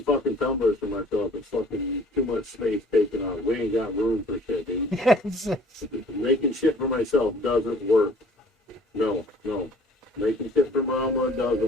fucking tumblers for myself is fucking too much space taken on. We ain't got room for shit, dude. Making shit for myself doesn't work. No. Making shit for Mama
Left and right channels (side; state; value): both; normal; correlation 0.53